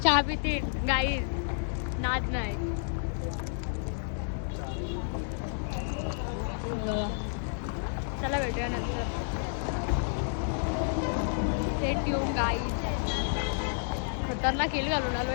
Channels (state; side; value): silent; right; 58 dB below the other